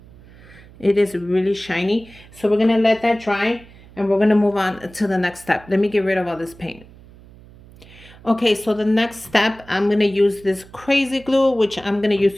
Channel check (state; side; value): noise; right; hum, 22 dB below the sound